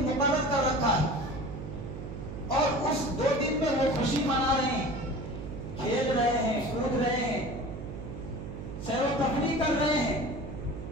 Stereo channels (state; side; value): noise; right; hum, 9 dB below the sound